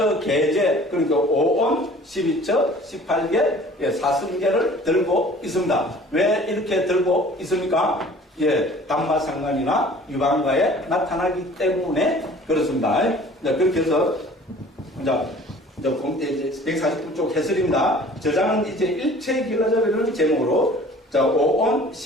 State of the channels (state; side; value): normal; both; correlation 0.48